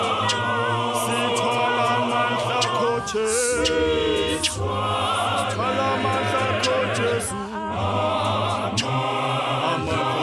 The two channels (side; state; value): both; identical; correlation 1.00